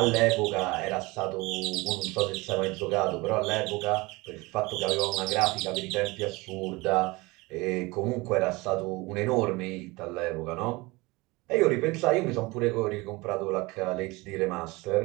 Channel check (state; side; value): quieter; left; 23.3 dB